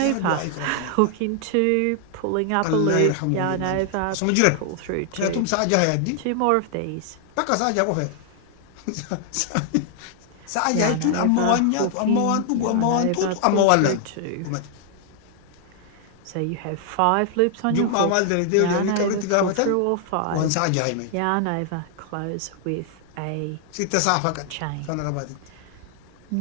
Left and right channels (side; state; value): both; different; correlation 0.00